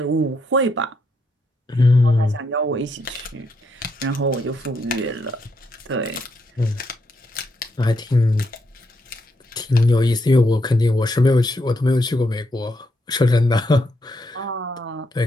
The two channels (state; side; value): normal; both; correlation 0.78